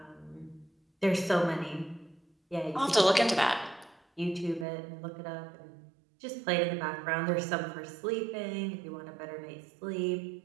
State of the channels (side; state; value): left; drops out; at 4.7 s